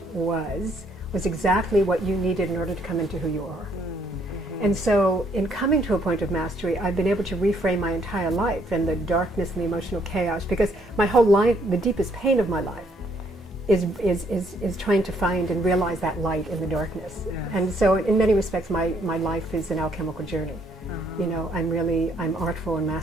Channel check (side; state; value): both; normal; correlation 0.68